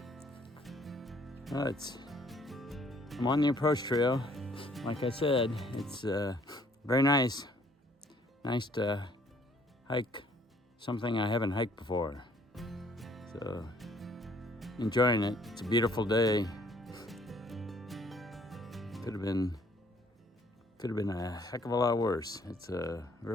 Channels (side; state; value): both; normal; correlation 0.62